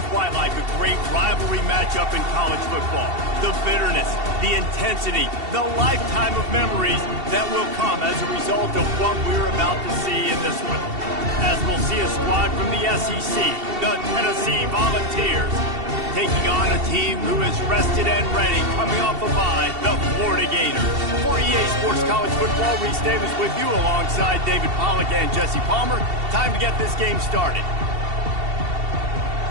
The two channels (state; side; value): late; left; 2.7 ms